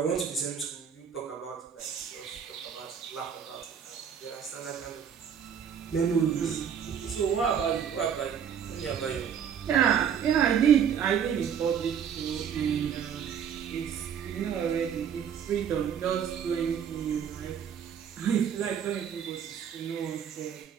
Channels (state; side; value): quieter; left; 8.0 dB